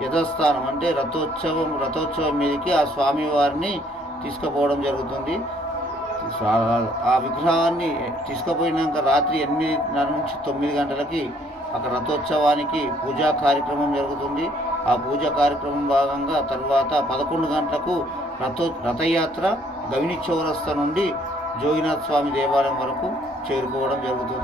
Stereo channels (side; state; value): both; normal; correlation 0.64